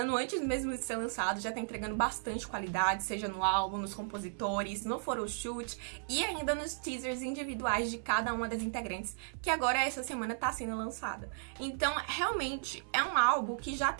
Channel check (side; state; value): left; silent; digital silence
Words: antes mesmo de ser lançado, já tá entregando bastante qualidade, seja no álbum, nos compositores, no photoshoot e ainda nos teasers individuais de cada uma das integrantes, que agora essa semana tá sendo lançada. Então, realmente, é um álbum que já